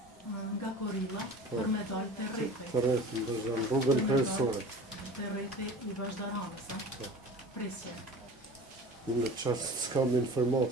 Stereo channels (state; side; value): normal; both; correlation 0.39